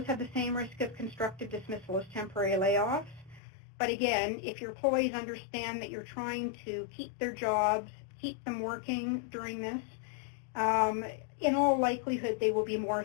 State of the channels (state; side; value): drops out; right; at 3.4 s